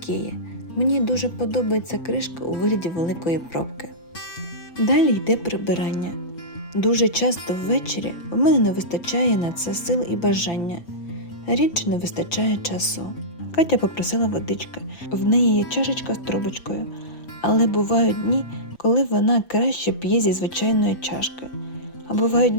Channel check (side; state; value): right; late; 5.9 ms